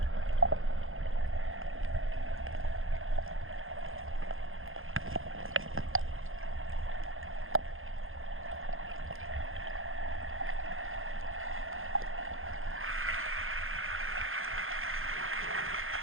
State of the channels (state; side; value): late; left; 0.60 ms